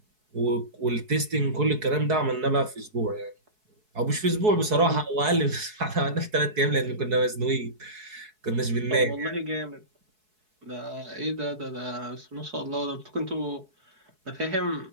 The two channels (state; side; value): late; left; 4.7 ms